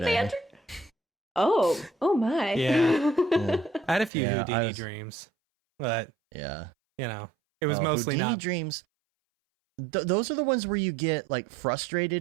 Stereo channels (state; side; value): drops out; left; at 4.1 s